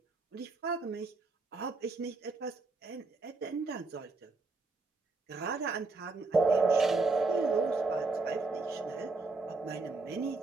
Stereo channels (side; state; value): left; quieter; 3.7 dB